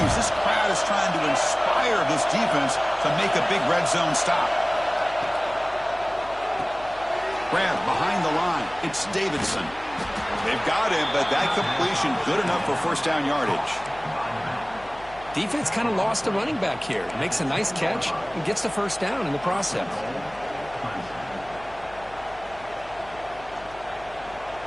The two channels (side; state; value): left; noise; hum, 21 dB below the sound